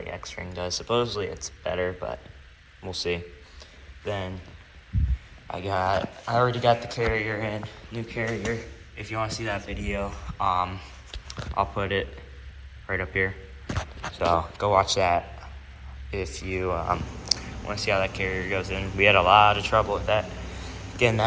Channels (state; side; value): identical; both; correlation 1.00